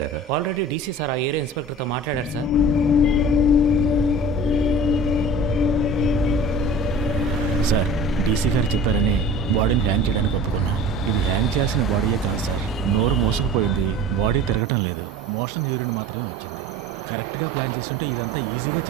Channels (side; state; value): both; normal; correlation 0.40